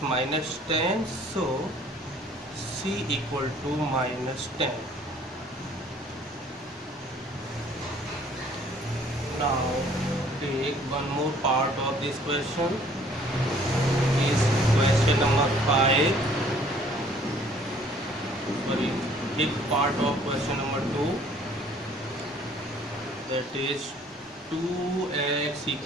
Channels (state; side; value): normal; both; correlation 0.57